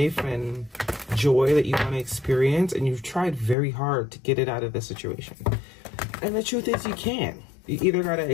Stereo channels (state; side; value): drops out; right; at 3.6 s